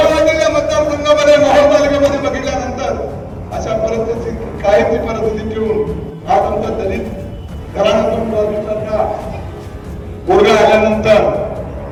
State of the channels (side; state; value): both; identical; correlation 1.00